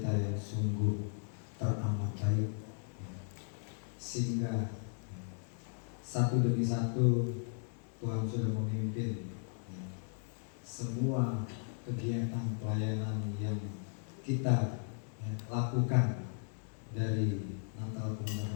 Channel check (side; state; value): right; silent; 54 dB below the other